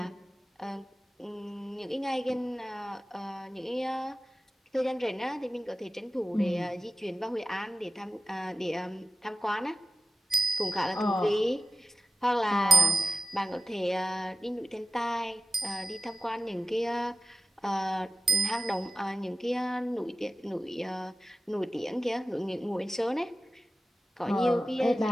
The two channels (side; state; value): both; normal; correlation 0.94